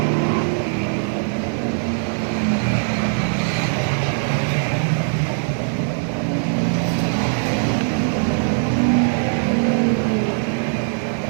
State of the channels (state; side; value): silent; left; 65 dB below the other